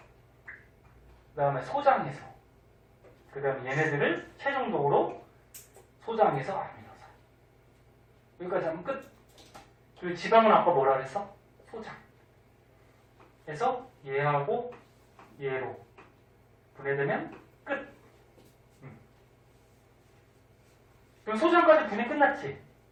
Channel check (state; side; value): identical; both; correlation 1.00